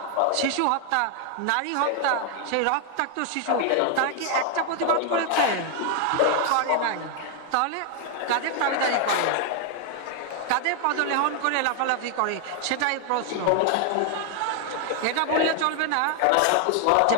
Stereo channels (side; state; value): both; different; correlation 0.00